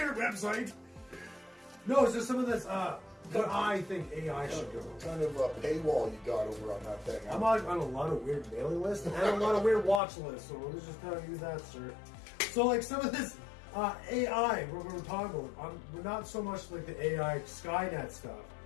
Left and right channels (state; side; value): drops out; right; at 10.0 s